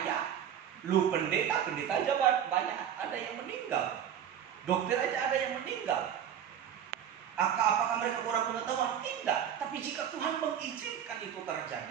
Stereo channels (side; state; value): left; quieter; 9.2 dB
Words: lu pendeta aja banyak, ada yang meninggal. Dokter aja ada yang meninggal. Apakah mereka kurang pengetahuan? Tidak. Tapi jika Tuhan mengizinkan itu